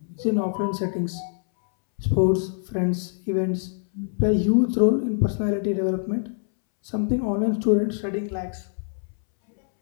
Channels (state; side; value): silent; right; 62 dB below the other